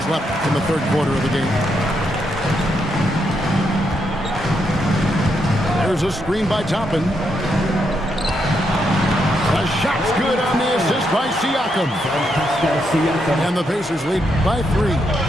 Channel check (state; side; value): normal; both; correlation 0.79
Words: left in the third quarter of the game. There's a screen by Toppin. The shot's good on the assist by Siakam. And the Pacers lead by 3.